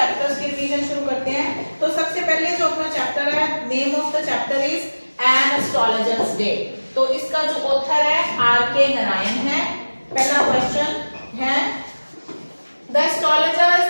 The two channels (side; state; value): both; inverted; correlation -1.00